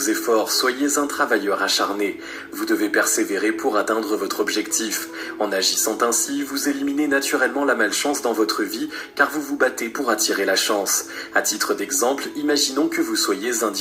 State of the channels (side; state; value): both; identical; correlation 1.00